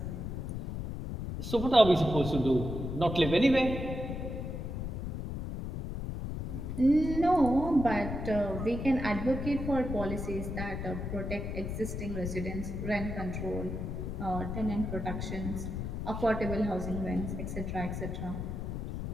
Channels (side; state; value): left; noise; rumble, 4 dB below the sound